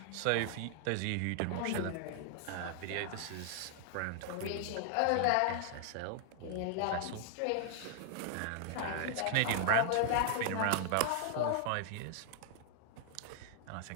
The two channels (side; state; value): both; different; correlation -0.01